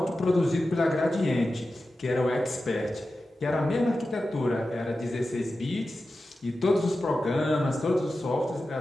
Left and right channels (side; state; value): both; normal; correlation 0.93